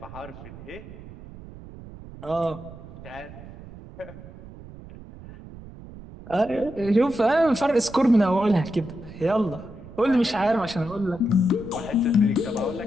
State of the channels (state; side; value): noise; right; rumble, 16 dB below the sound